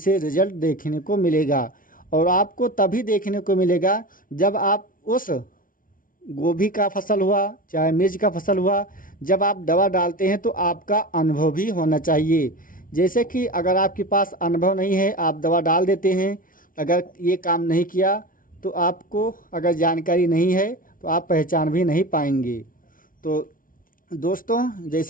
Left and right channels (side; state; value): right; late; 0.39 ms